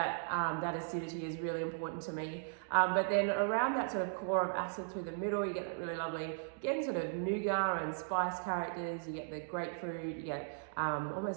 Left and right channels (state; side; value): silent; left; digital silence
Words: acidity is really important to me. But then around that sort of core of acid through the middle, you get that really lovely, again, sort of nougat and spice characters. You get the grapefruit, you get